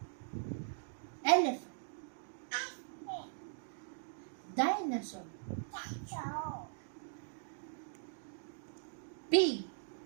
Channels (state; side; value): silent; left; digital silence